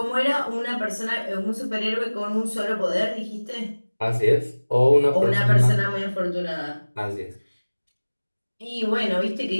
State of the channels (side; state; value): both; inverted; correlation -1.00